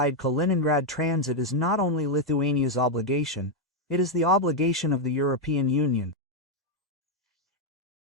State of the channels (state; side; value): normal; both; correlation 0.01